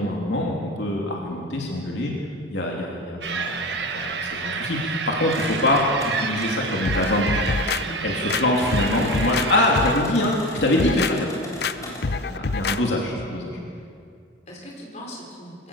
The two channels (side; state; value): both; normal; correlation 0.27